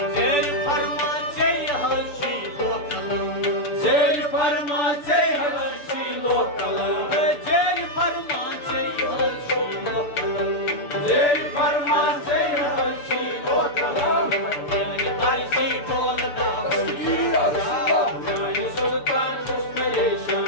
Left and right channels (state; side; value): late; right; 6.9 ms